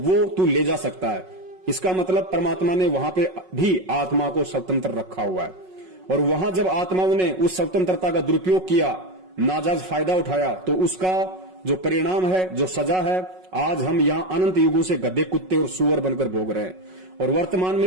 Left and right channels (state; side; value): late; left; 5.4 ms